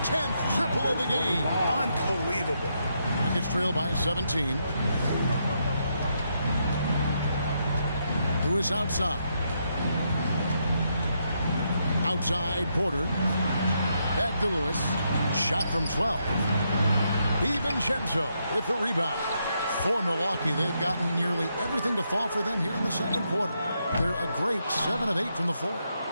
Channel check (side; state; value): both; inverted; correlation -0.79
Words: 10th triple of the game. Unbelievable. Rockets trail by 17. Lewis outside. Outside Porter. Back to Lewis. Shot from 12. DiVincenzo with the rebound. For Milwaukee, they've gotten nearly everything to fall for them here in the second quarter. They're a great 7 of 8 from the floor.